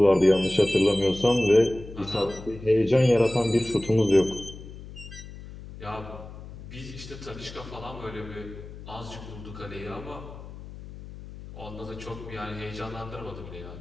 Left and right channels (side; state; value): left; noise; hum, 14 dB below the sound